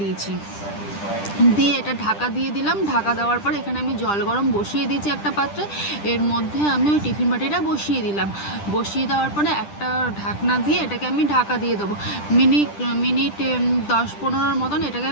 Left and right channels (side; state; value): right; late; 10 ms